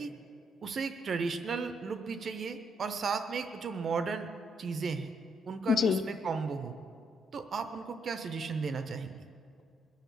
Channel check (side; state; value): both; normal; correlation 0.75